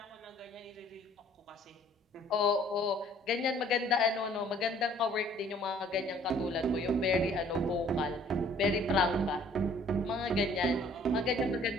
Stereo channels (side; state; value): both; normal; correlation 0.57